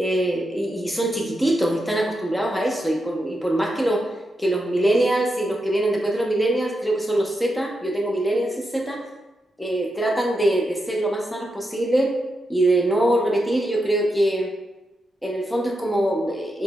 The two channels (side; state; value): both; normal; correlation 0.86